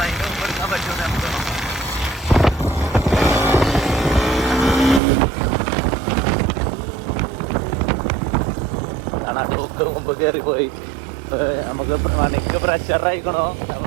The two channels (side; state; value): left; drops out; at 5.0 s